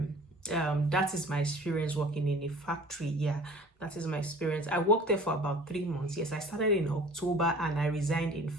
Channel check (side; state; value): both; normal; correlation 0.46